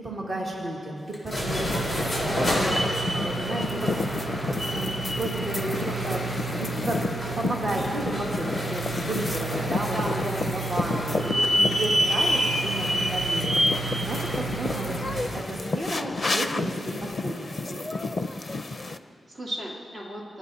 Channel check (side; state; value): both; normal; correlation 0.83